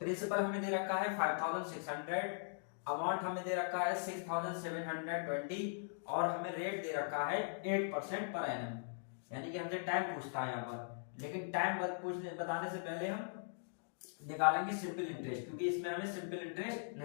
प्रिंसिपल हमें दे रखा है 5600, अमाउंट हमें दे रखा है 6720 और हमें रेट दे रखा है 8% पर एनम। यानी कि हमसे टाइम पूछता है यहाँ पर। लेकिन टाइम बताने से पहले हम निकालेंगे सिंपल इंटरेस्ट, क्योंकि इसमें हमें सिंपल इंटरेस्ट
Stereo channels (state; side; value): silent; right; digital silence